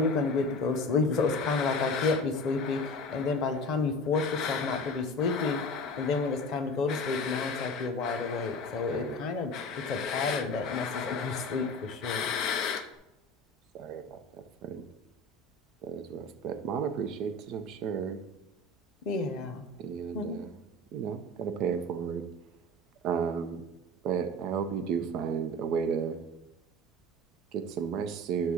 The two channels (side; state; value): both; normal; correlation 0.34